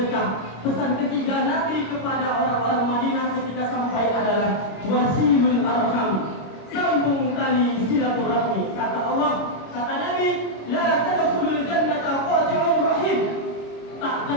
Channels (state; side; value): late; right; 26 ms